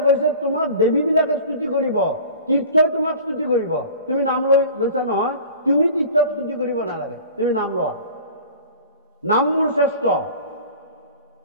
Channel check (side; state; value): both; inverted; correlation -0.41